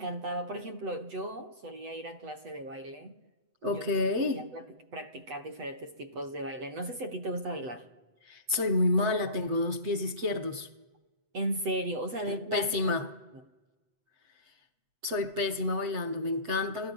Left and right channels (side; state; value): left; late; 8.0 ms